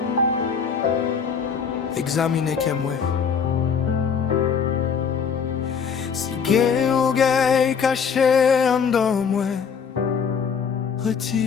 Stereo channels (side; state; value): right; quieter; 6.5 dB